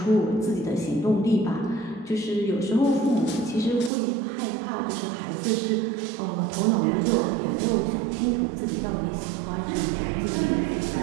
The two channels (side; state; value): left; drops out; at 3.9 s